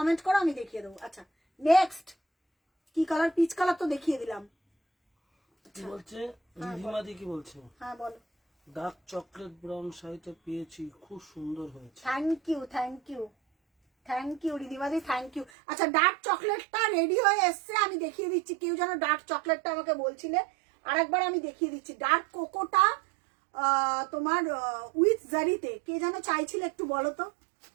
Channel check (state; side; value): drops out; left; at 15.5 s